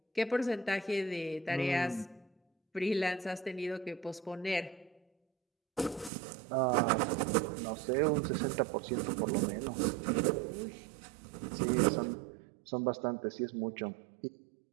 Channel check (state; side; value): drops out; left; at 6.1 s